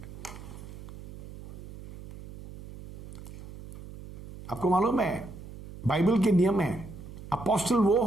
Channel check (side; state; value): right; noise; hum, 14 dB below the sound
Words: आपको मालूम है बाइबल के नियम है, अपोस्टल वो